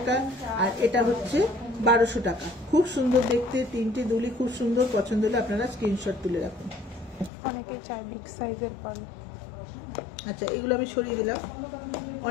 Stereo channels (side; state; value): right; drops out; at 7.3 s